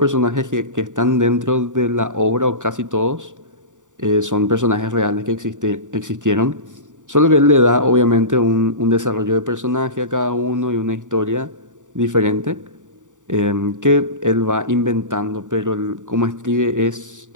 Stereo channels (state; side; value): late; left; 0.86 ms